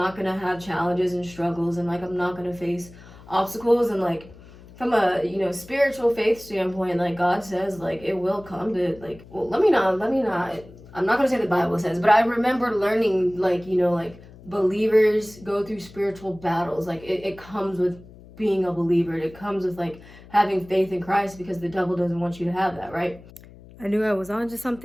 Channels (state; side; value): noise; left; hum, 20 dB below the sound